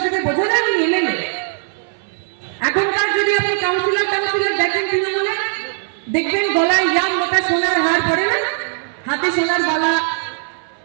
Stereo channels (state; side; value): silent; left; 61 dB below the other